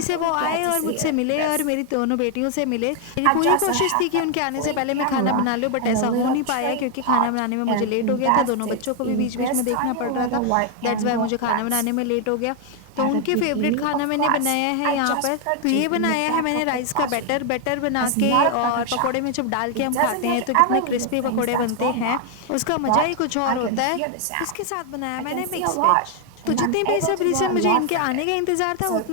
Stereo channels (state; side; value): different; both; correlation 0.00